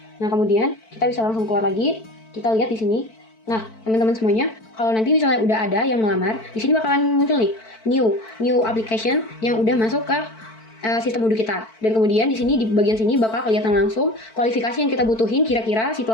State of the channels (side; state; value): right; late; 4.5 ms